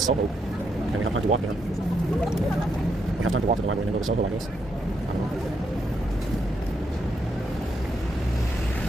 and we have time to walk there. We have time to walk to the library and then go to Soho, I guess. I don't know.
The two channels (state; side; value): normal; both; correlation 0.79